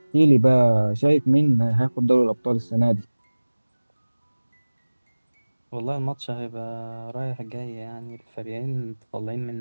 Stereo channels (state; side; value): inverted; both; correlation -1.00